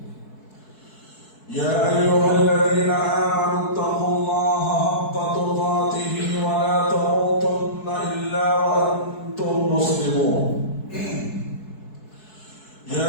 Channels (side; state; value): right; late; 4.7 ms